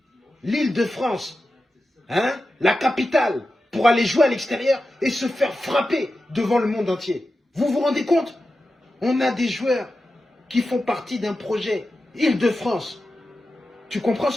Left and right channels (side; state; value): both; normal; correlation 0.92